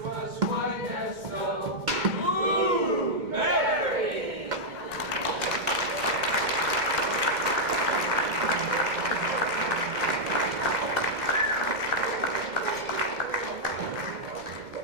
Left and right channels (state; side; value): late; left; 2.1 ms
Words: white as snow. Ooh, Mary!